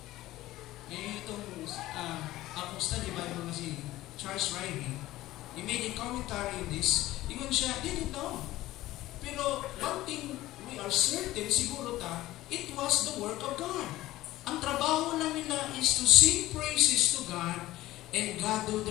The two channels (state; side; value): quieter; right; 16.3 dB